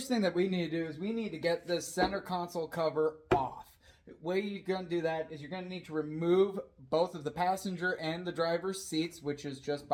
thing that we need to do is we need to get this center console cover off. The way you're going to do that is you're going to need to remove both of the passenger and the driver's seats, which is just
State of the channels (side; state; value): both; identical; correlation 1.00